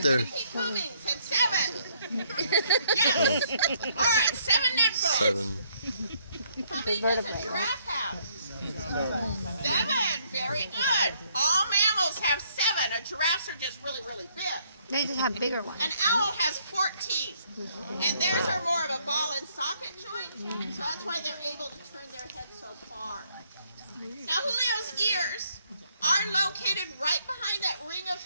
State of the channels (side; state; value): both; inverted; correlation -0.68